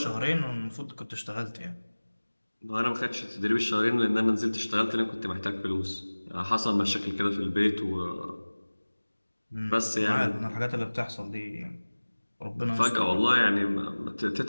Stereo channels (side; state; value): both; inverted; correlation -1.00